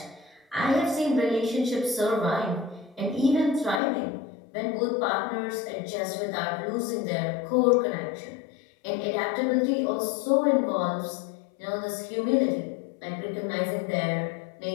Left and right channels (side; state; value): right; drops out; at 3.8 s